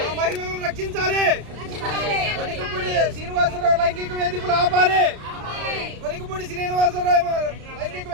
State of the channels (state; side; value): late; left; 33 ms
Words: మహిళలను రక్షించాలి. వనికపూడి శ్రీనివాసరావు లైంగిక వేధింపులు ఆపాలి, వనికపూడి శ్రీనివాసరావు లైంగిక